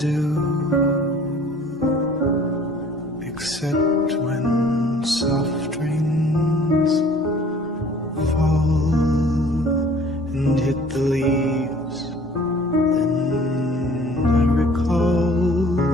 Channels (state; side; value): normal; both; correlation 0.51